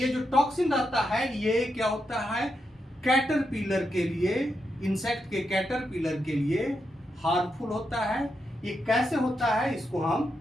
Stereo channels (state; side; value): normal; both; correlation 0.84